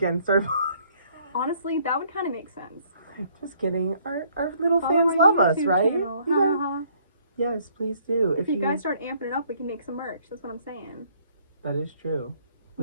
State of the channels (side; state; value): both; inverted; correlation -0.64